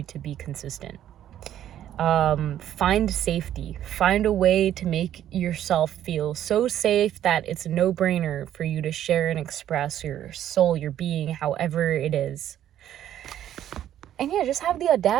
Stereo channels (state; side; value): quieter; left; 11.3 dB